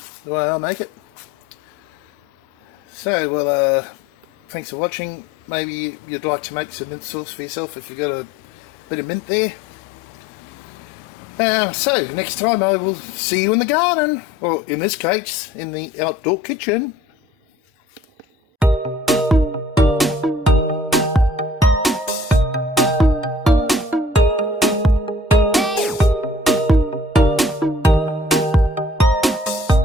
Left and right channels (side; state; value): both; normal; correlation 0.53